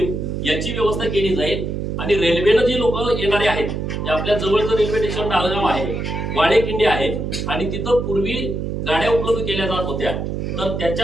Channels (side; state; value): right; noise; hum, 3 dB below the sound